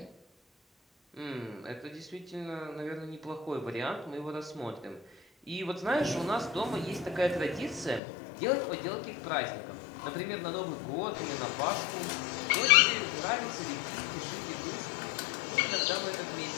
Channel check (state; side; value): drops out; right; at 8.0 s